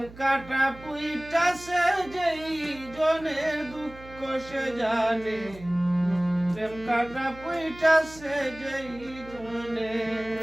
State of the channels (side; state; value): right; noise; hum, 18 dB below the sound